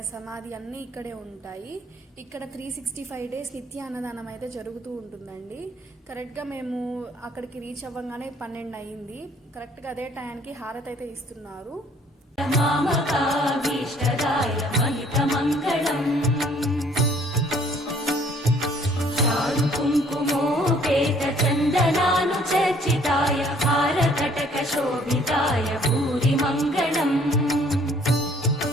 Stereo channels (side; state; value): both; normal; correlation 0.59